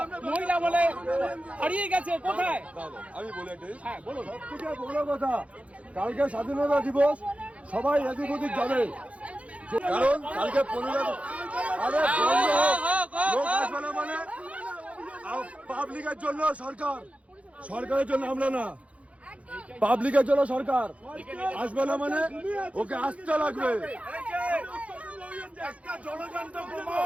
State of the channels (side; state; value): left; late; 0.064 ms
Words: মহিলা বলে হারিয়ে গেছে কোথায়? আমি বলে দিই, হ্যাঁ বলুন। সবথেকে বড় কথা, কালকে স্বাধীনতা দিবস সবাই এদিক ওদিক যাবে, কারণ কালকে 15 আরে লোক আসবে না মানে পাবলিকের জন্য সরকার, সরকারের জন্য আমরা না, পাবলিকের জন্য সরকার আসবে না মানে ওকে আসতে লাগবে।